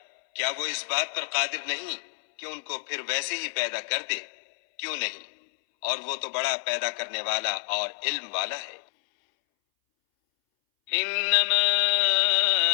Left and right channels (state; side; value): silent; right; 60 dB below the other